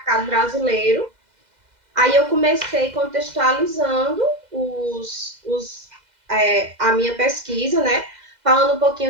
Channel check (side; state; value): left; late; 2.0 ms